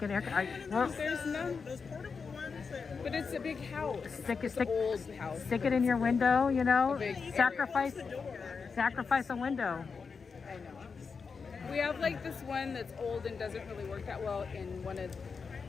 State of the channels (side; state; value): right; quieter; 5.3 dB